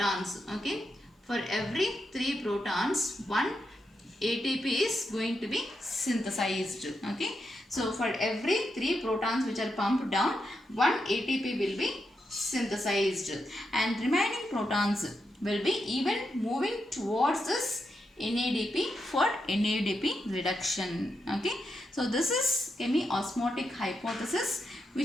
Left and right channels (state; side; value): normal; both; correlation 0.85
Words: okay, for every 3 protons, one ATP is going to be synthesized, okay. So for every 3 protons which are pumped down, one ATP will be synthesized, and remaining protons will be even moving towards this NADP for NADP reduction, okay. So this is chemiosmotic hypothesis,